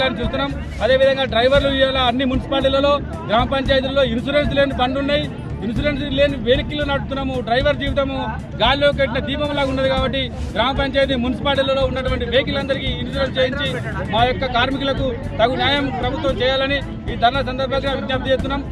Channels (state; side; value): identical; both; correlation 1.00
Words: చూస్తున్నాం. అదేవిధంగా డ్రైవర్లు ఇవాళ అన్ని మున్సిపాలిటీలలో, గ్రామ పంచాయతీలలో ఇన్సూరెన్స్ లేని బండ్లు ఉన్నాయి. ఇన్సూరెన్స్ లేని వెహికల్ నడుపుతున్నాము. డ్రైవర్ జీవితము గాలిలో కట్టిన దీపంలాగా ఉన్నది. కాబట్టి గ్రామ పంచాయతీ, మున్సిపాలిటీలలో ఉన్నటువంటి వెహికల్ అందరికీ ఇన్సూరెన్స్ చేయించి మా యొక్క కార్మికులకు తగు న్యాయం ప్రభుత్వం చేయాలని ఈ ధర్నా సందర్భంగా విజ్ఞప్తి చేస్తున్నాం.